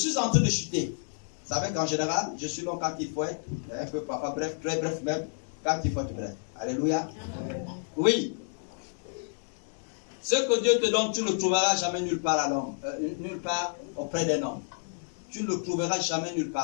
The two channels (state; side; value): silent; right; digital silence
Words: en train de chuter. Vous savez qu'en général, je suis long quand il faut être, un peu parfois bref, très bref même, quand il faut être bref. Alléluia. Oui. Ce que Dieu te donne, tu ne le trouveras jamais nulle part à l'homme, nulle part auprès d'un homme. Tu ne le trouveras jamais nulle